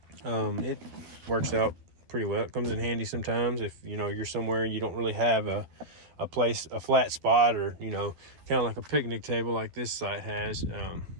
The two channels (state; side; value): late; left; 12 ms